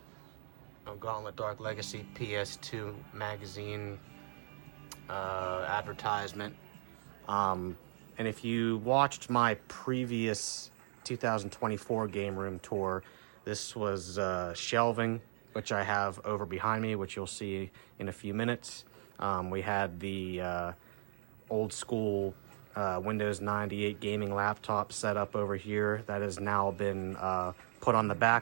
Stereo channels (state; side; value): silent; left; digital silence